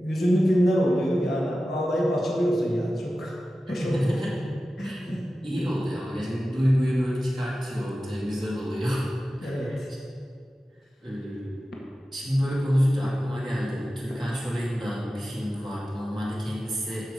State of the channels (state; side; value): normal; both; correlation 0.94